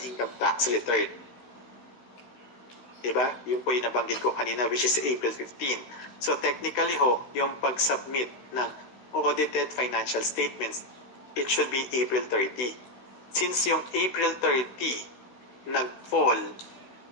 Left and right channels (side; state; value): right; late; 16 ms